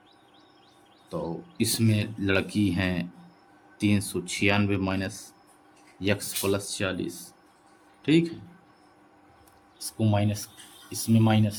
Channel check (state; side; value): identical; both; correlation 1.00